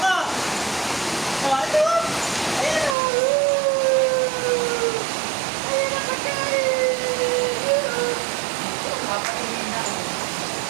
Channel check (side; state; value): left; drops out; at 3.0 s